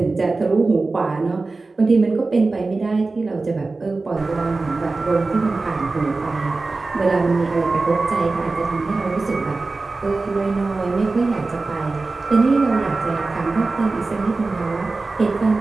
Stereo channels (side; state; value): left; quieter; 3.6 dB